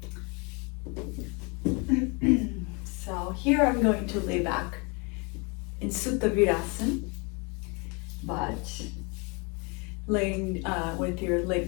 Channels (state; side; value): quieter; right; 31.4 dB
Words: So here I'm going to lay back in Supta Virasana, but laying with your